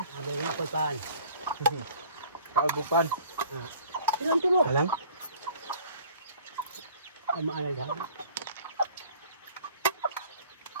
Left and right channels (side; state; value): both; inverted; correlation -0.52